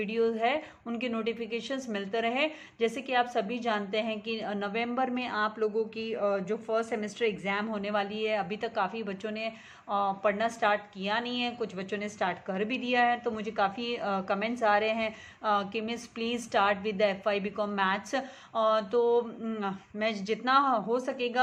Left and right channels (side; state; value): both; identical; correlation 1.00